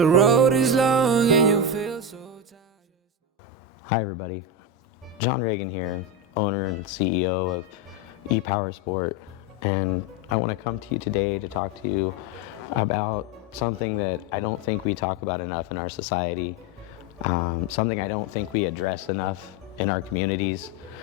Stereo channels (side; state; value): both; normal; correlation 0.13